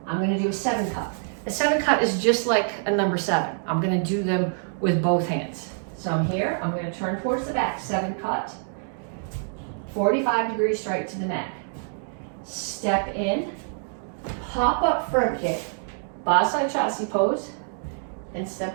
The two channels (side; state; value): left; silent; digital silence